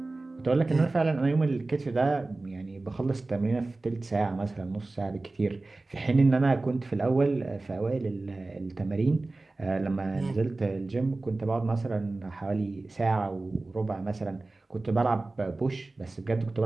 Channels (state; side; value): quieter; left; 3.2 dB